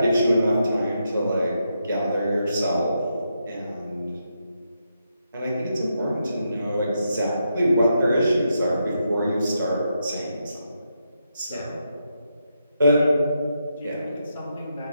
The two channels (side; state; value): both; inverted; correlation -0.83